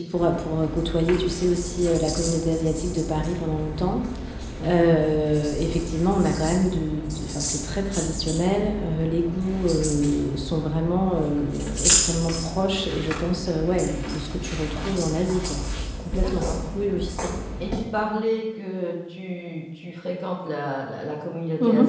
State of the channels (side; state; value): both; identical; correlation 1.00